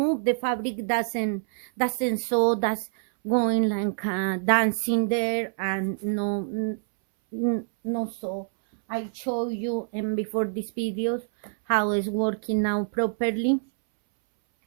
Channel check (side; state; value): left; silent; 61 dB below the other